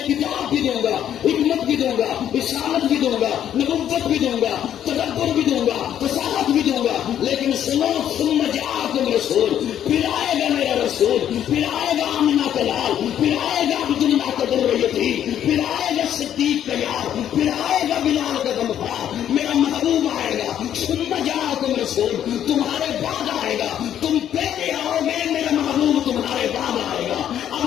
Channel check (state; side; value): quieter; right; 10.3 dB